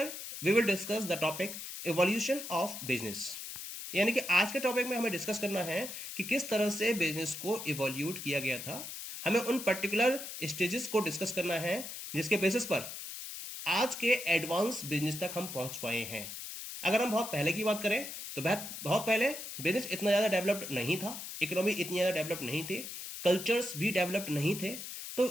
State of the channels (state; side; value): noise; left; hiss, 8 dB below the sound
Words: we will discuss the topic Evolution of Business. यानी कि आज के topic में हमें discuss करना है कि किस तरह से बिजनेस को इवोल्यूट किया गया था। हमें उन पर्टिकुलर स्टेजेस को डिस्कस करना है जिसके बेसिस पर आज के एडवांस बिजनेस तक हम पहुंच पाए हैं। अगर हम बहुत पहले की बात करें तो बहुत पहले बिजनेस इतना ज़्यादा डेवलप्ड नहीं था, इकोनॉमी इतनी ज़्यादा डेवलप्ड नहीं थी, कल्चर्स भी डेवलप्ड नहीं थे। तो